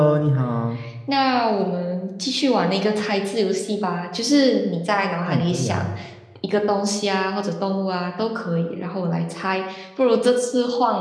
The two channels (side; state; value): both; identical; correlation 1.00